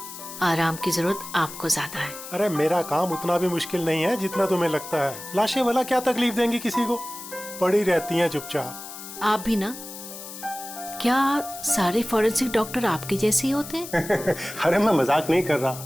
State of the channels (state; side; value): noise; left; hiss, 12 dB below the sound